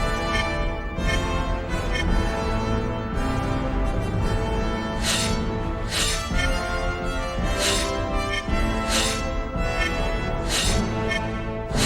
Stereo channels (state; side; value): identical; both; correlation 1.00